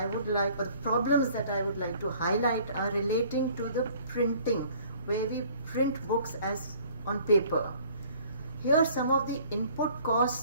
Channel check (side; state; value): both; inverted; correlation -0.55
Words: would like, or the problems that I would like to highlight are relating to the printing, where we print books as on paper. Here, some of the input